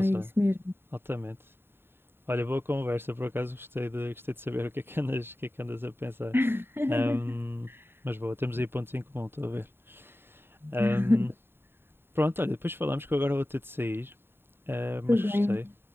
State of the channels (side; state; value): left; late; 0.11 ms